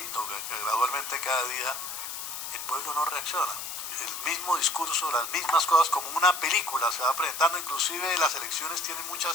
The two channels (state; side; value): noise; left; hiss, 7 dB below the sound